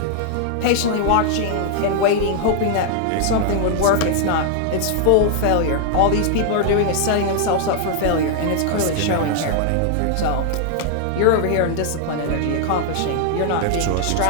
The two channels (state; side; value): different; both; correlation -0.01